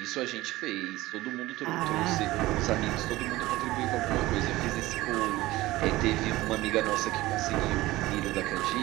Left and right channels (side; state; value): left; quieter; 18.1 dB